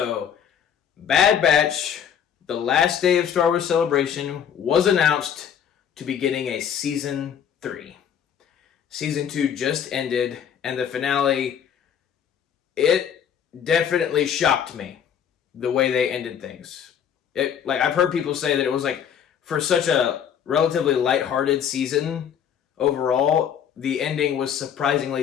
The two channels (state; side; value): quieter; right; 8.5 dB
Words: Bad Batch, the last day of Star Wars Celebration, was announced to be getting a Season 3. Season 2 just ended, and the finale, it definitely shocked me the way they ended things. I've heard people say that it was for such a relatively lighthearted season overall, the ending was